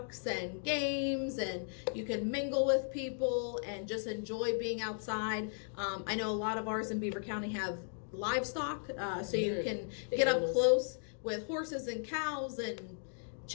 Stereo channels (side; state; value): right; silent; digital silence